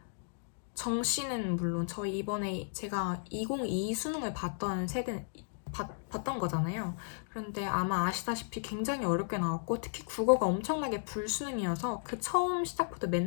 정시는 물론 저희 이번에 제가 2022 수능을 봤던 거잖아요. 그런데 아마 아시다시피 굉장히 어렵게 나왔고 특히 국어가 엄청나게 불수능이어서 그 처음 시작부터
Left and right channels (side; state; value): right; silent; digital silence